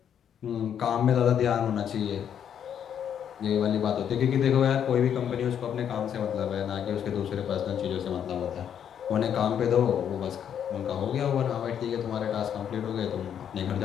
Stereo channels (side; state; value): right; quieter; 8.9 dB